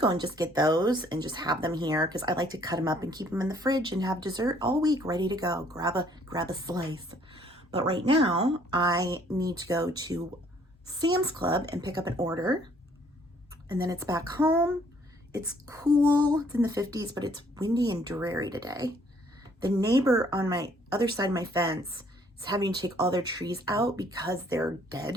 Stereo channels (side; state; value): both; normal; correlation 0.63